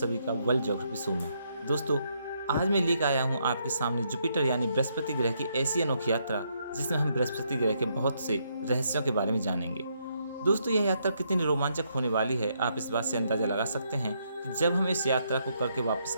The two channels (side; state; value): both; inverted; correlation -0.75